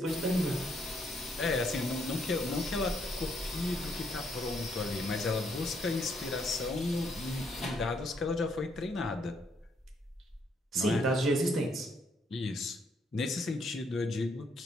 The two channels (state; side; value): normal; both; correlation 0.72